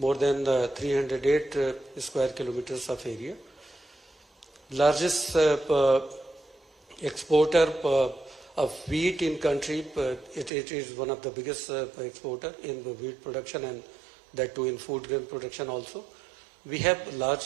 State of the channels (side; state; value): left; drops out; at 10.5 s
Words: than 308 square kilometers of area. Largest exporter of wheat in country. It is one of the biggest exporter in the wheat production, and that too in food grain production also. We have